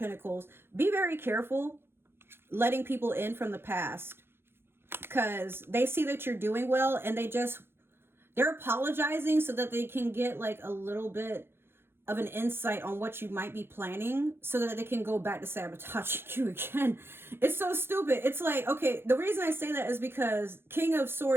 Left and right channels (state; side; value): late; left; 0.11 ms